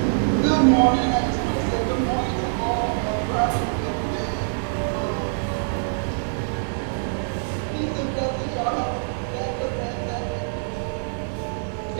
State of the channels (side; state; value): left; silent; digital silence